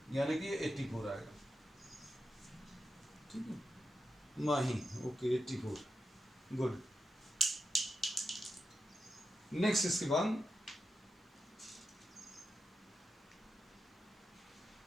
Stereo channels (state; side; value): normal; both; correlation 0.88